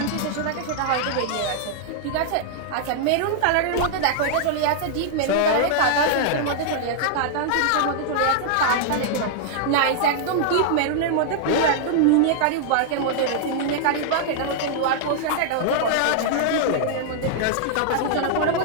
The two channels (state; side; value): different; both; correlation -0.01